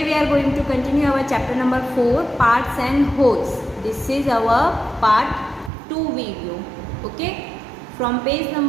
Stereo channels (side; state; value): left; drops out; at 5.7 s